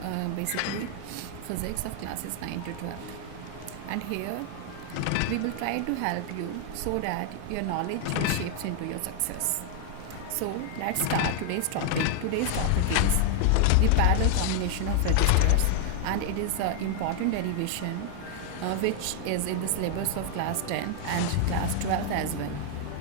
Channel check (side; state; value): both; different; correlation 0.00